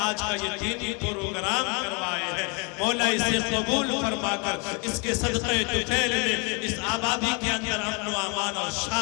का ये दीनी प्रोग्राम करवाए हैं, मौला इसे कबूल फरमाकर इसके सदक़े तुफैल में इस आबादी के अंदर अमन व अमान और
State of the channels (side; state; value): right; quieter; 32.6 dB